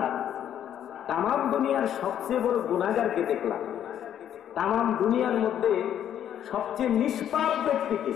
তামাম দুনিয়ার সবচেয়ে বড় গুনাহগারকে দেখলাম, তামাম দুনিয়ার মধ্যে সবচেয়ে নিষ্পাপ ব্যক্তিকে,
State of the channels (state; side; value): quieter; right; 10.1 dB